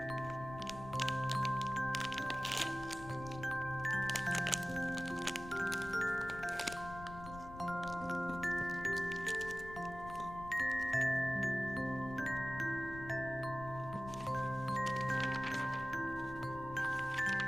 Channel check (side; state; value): left; noise; rumble, 13 dB below the sound